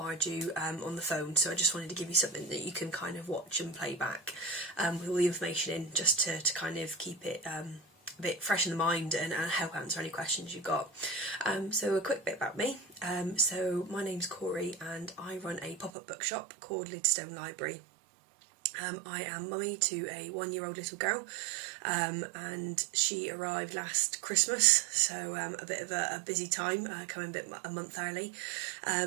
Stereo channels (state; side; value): drops out; left; at 15.9 s